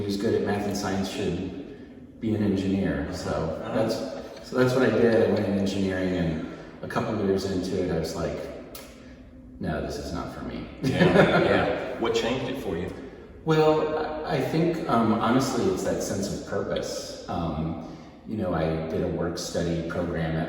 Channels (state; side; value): identical; both; correlation 1.00